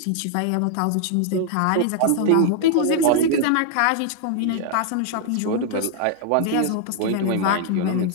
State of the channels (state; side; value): different; both; correlation 0.00